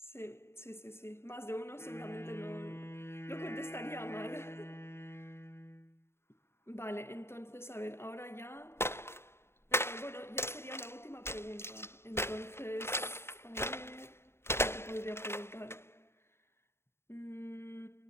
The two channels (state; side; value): late; right; 0.12 ms